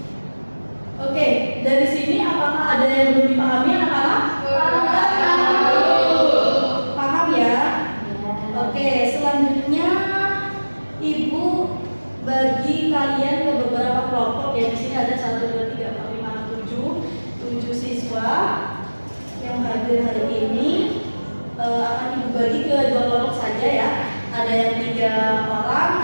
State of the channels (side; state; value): both; inverted; correlation -1.00